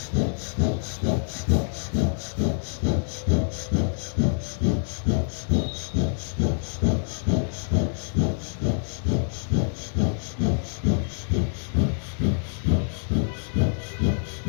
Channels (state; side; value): silent; right; digital silence